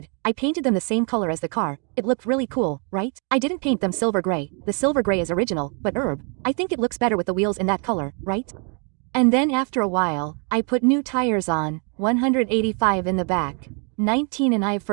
I painted them the same color as the car, it looked really cool, right? I didn't paint them silver gray, the silver gray is original, but herb, I think it looks better with the wheels in that color, right? And then after a while, I put new tires on, 185 in the back, 19 and I've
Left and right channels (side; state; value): left; quieter; 37.9 dB